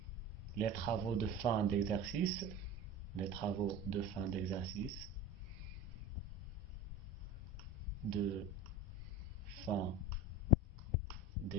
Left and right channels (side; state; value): both; normal; correlation 0.31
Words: les travaux de fin d'exercice, de fin